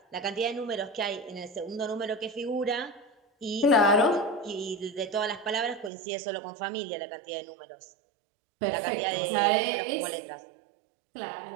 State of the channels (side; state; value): left; drops out; at 5.9 s